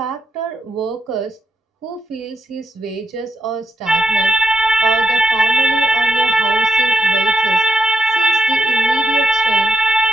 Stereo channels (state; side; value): normal; both; correlation 0.80